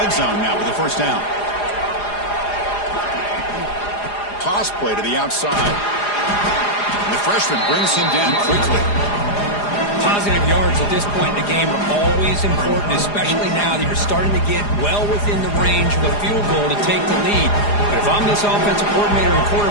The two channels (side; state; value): right; late; 4.9 ms